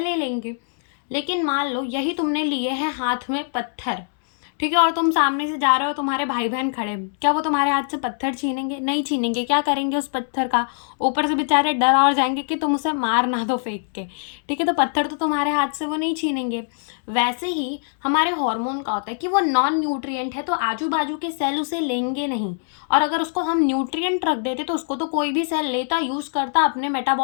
ले लेंगे। लेकिन मान लो यही तुमने लिए हैं हाथ में पत्थर, ठीक है, और तुम सामने से जा रहे हो, तुम्हारे भाई बहन खड़े, क्या वो तुम्हारे हाथ से पत्थर छीनेंगे? नहीं छीनेंगे। क्या करेंगे उस पत्थर का, ऊपर से बेचारे डर और जाएंगे कि तुम उसे मार ना दो फेंक के, ठीक है, तो पत्थर तो तुम्हारे हाथ से वो नहीं छीनेंगे। वैसे ही हमारे हार्मोन का होता है कि वो नॉन न्यूट्रिएंट है, तो आजू बाजू के सेल उसे लेंगे नहीं, और अगर उसको हम न्यूट्रिएंट रख देते तो उसको तो कोई भी सेल लेता, यूज करता अपने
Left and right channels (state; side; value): silent; right; digital silence